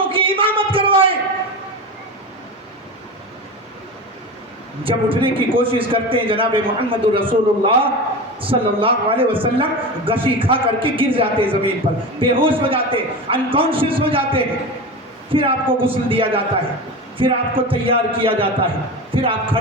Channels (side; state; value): both; normal; correlation 0.26